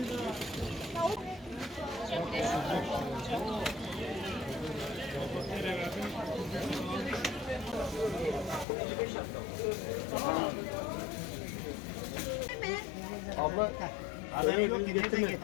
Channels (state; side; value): drops out; right; at 8.7 s